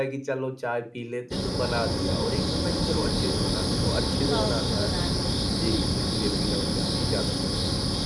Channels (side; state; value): both; identical; correlation 1.00